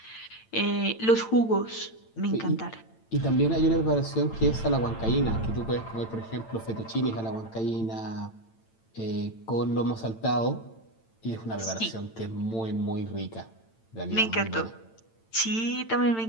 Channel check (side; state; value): right; late; 8.9 ms